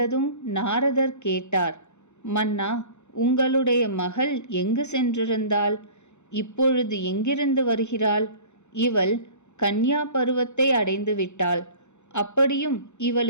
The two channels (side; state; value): right; late; 0.83 ms